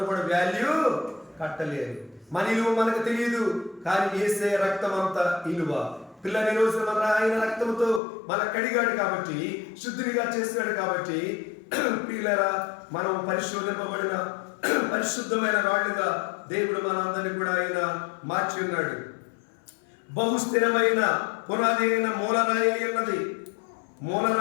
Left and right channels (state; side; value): drops out; right; at 8.0 s